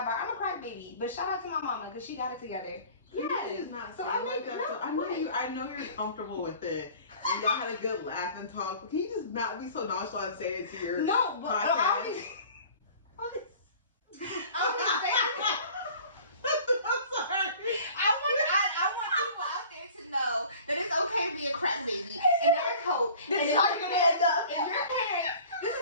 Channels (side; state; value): both; inverted; correlation -0.46